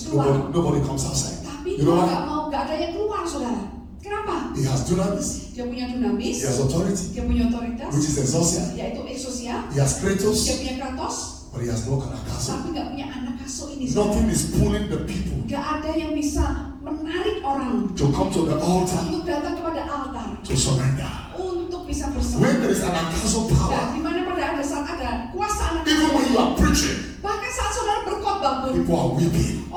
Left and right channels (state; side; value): identical; both; correlation 1.00